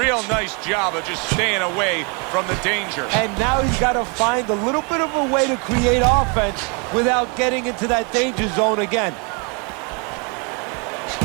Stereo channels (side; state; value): left; quieter; 33.6 dB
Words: nice job of just staying away from the danger. And now he's got to find a little bit of a way to create offense without getting into that danger zone again.